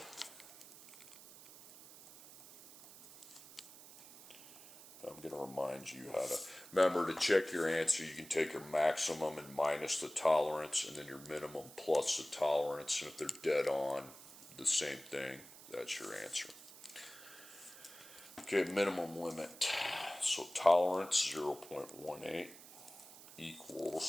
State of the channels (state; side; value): noise; right; hiss, 18 dB below the sound